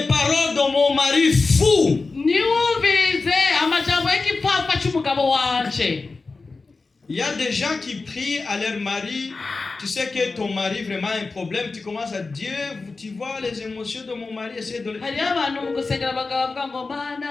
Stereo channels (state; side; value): quieter; right; 3.9 dB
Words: paroles de mon mari fou. Il y a des gens qui prient à leur mari. Tu sais que ton mari vraiment a un problème. Tu commences à dire, tu vois les émotions de mon mari. Essaye de...